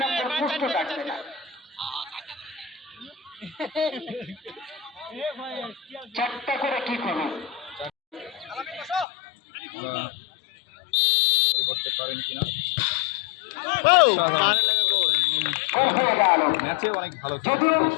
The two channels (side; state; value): right; drops out; at 9.1 s